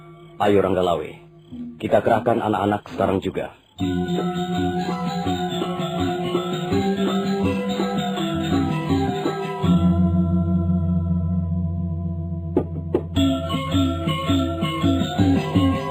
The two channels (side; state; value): both; identical; correlation 1.00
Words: Ayo, Ranggalawe. Kita kerahkan anak-anak sekarang juga.